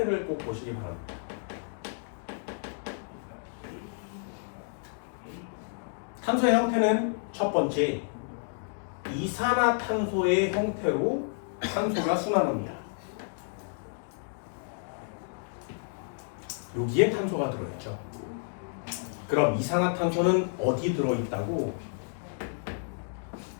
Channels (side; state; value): right; silent; digital silence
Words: 꼭 보시기 바랍니다. 탄소의 형태는 첫 번째 이산화탄소의 형태로 탄소가 순환합니다. 여기에 탄소가 들어있죠. 그럼 이산화탄소는 어디 들어있다고?